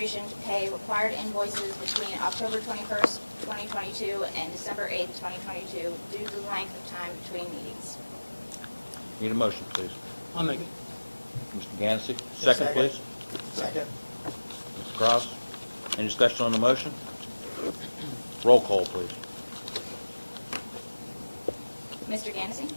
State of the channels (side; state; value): both; inverted; correlation -1.00